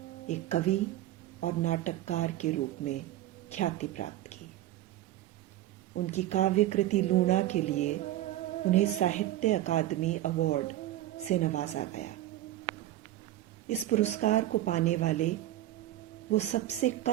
एक कवि और नाटककार के रूप में ख्याति प्राप्त की। उनकी काव्य कृति लूणा के लिए उन्हें साहित्य अकादमी अवार्ड से नवाजा गया। इस पुरस्कार को पाने वाले वो सबसे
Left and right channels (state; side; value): quieter; left; 14.2 dB